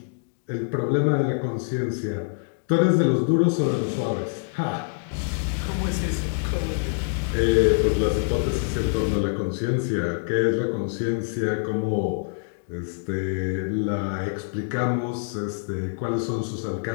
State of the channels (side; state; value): right; silent; digital silence